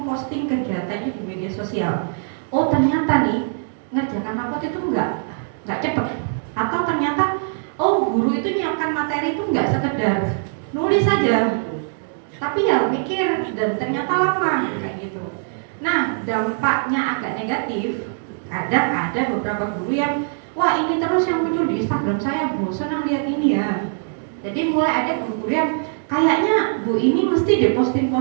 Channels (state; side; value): silent; left; digital silence